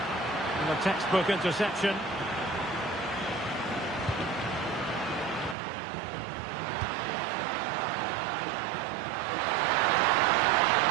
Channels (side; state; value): left; drops out; at 5.6 s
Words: And a textbook interception.